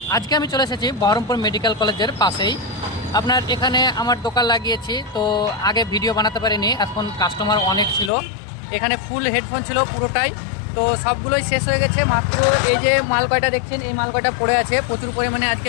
আজকে আমি চলে এসেছি বহরমপুর মেডিকেল কলেজের পাশেই। আপনার এখানে আমার দোকান লাগিয়েছি, তো আগে ভিডিও বানাতে পারিনি, এখন কাস্টমার অনেক ছিল। এখানে ফুল হেডফোন ছিল পুরোটাই, তো সবগুলোই শেষ হয়ে গেছে। মাত্র এই যে মাল কয়টা দেখছেন, এই মাল কয়টা পড়ে আছে। প্রচুর পরিমাণে আজকে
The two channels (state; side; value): drops out; right; at 8.1 s